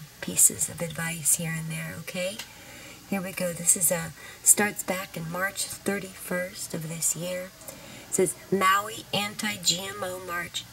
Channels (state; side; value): identical; both; correlation 1.00